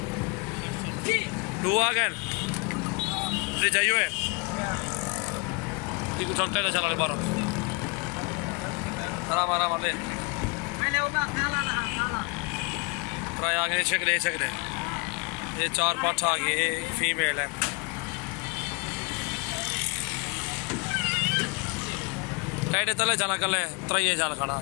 तू आ गए जाइए चलते चला बारह आराम आराम ले ट्राई आ गए शकले ये 4 पाठ आ गए। ये फीमेल है। टाइटे तले चला कल त्रये चल खड़ा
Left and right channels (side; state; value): right; quieter; 31.3 dB